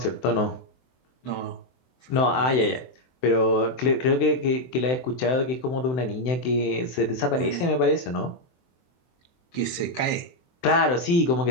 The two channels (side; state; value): right; late; 23 ms